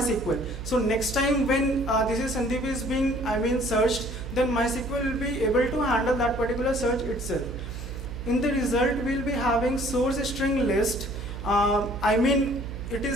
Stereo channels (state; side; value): noise; right; hum, 9 dB below the sound